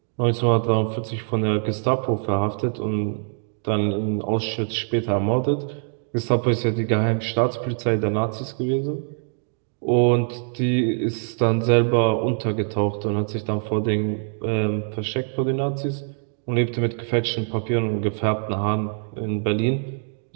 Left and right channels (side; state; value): left; silent; 58 dB below the other